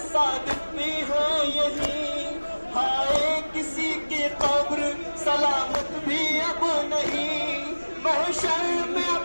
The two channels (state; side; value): inverted; both; correlation -1.00